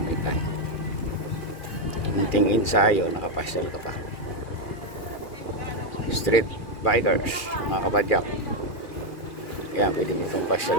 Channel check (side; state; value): right; late; 2.4 ms